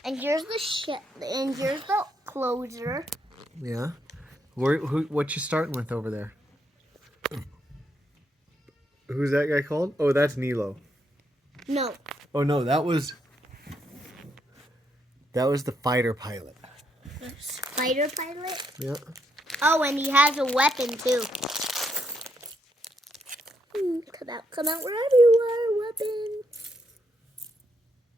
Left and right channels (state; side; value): normal; both; correlation 0.77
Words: And here's the ship. And here's the closer. Yeah. What you starting with over there? Who's that guy called? Oh, that's Nilo. No. Oh no, that was the fighter pilot. Fighter pilot? Yeah. Oh, and he has a weapon too. Come out wherever you are, weapon.